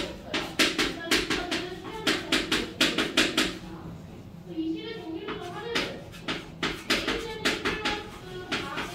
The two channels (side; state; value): both; identical; correlation 1.00